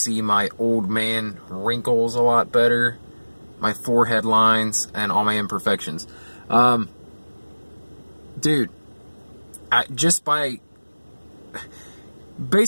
my old man wrinkles a lot better, my forehead lines, and all my imperfections. Dude,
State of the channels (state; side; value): inverted; both; correlation -1.00